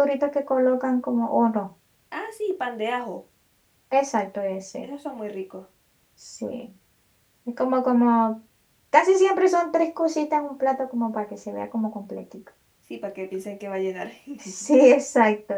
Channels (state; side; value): identical; both; correlation 1.00